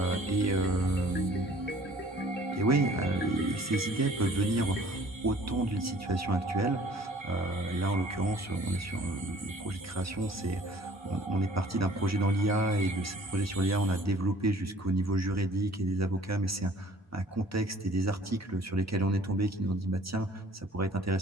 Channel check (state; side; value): normal; both; correlation 0.52